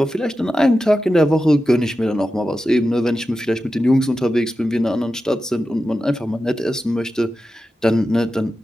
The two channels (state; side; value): normal; both; correlation 0.92